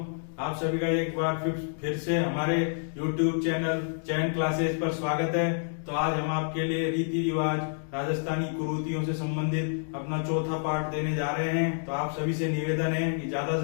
आप सभी का एक बार फिर से हमारे YouTube चैनल चैन क्लासेस पर स्वागत है। तो आज हम आपके लिए रीति रिवाज राजस्थानी कुरीतियों से संबंधित अपना चौथा पार्ट देने जा रहे हैं। तो आप सभी से निवेदन है कि ज्यादा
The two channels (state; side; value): silent; right; digital silence